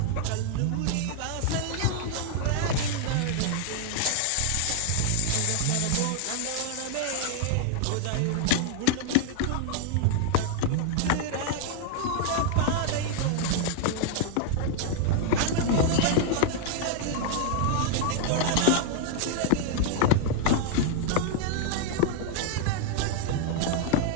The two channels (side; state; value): both; different; correlation 0.00